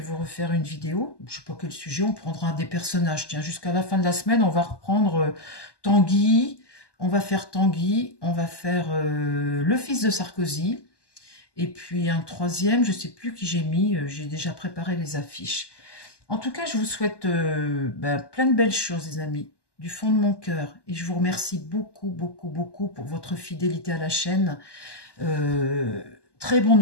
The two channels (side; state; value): right; late; 1.1 ms